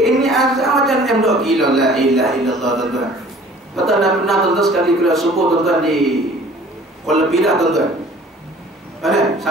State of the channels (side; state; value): both; normal; correlation 0.50